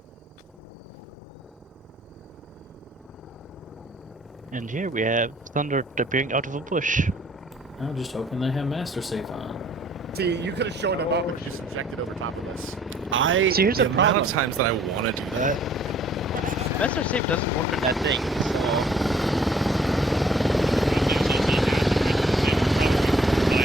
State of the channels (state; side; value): normal; both; correlation 0.59